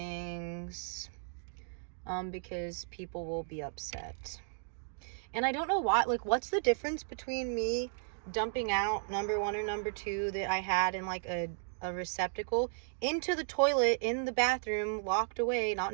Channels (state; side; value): silent; left; digital silence